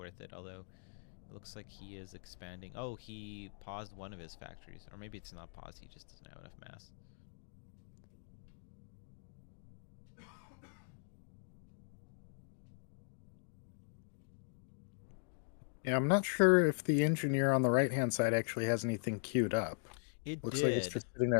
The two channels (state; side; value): silent; right; digital silence